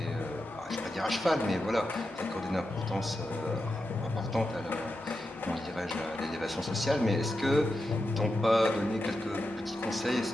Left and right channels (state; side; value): normal; both; correlation 0.89